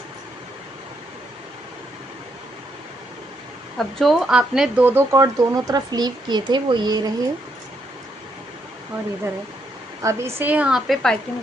अब जो आपने 2 2 कॉर्ड दोनों तरफ लीव किए थे वो ये रहे, और इधर है। अब इसे यहाँ पे पाइपिंग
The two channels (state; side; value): normal; both; correlation 0.76